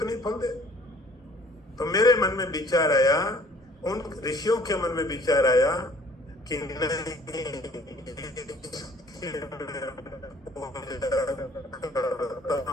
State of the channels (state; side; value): normal; both; correlation 0.55